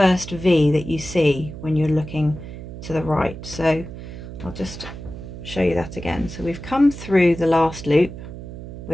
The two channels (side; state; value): right; noise; hum, 11 dB below the sound